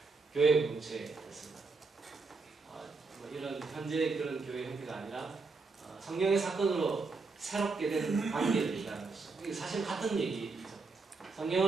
교회 공동체였습니다. 이런 현재 그런 교회 형태가 아니라 성령의 사건으로 새롭게 된 관계를 얘기하는 것이죠. 이게 사실 같은 얘기죠.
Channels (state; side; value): quieter; left; 4.2 dB